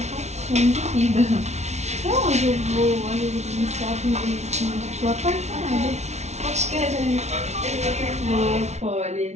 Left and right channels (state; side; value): late; left; 0.32 ms